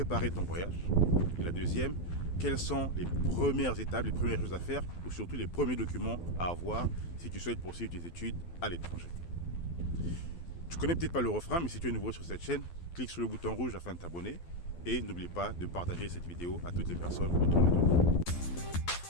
ton voyage. Et la deuxième, quelles sont les premières étapes, les premières choses à faire ou surtout les premiers documents à avoir si tu souhaites poursuivre tes études à l'étranger. Tu connais peut-être pas le refrain, mais si tu es nouveau sur cette chaîne, clique sur le bouton rouge afin de t'abonner et n'oublie pas de partager cette vidéo à toutes les personnes autour de toi.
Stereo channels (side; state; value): right; late; 12 ms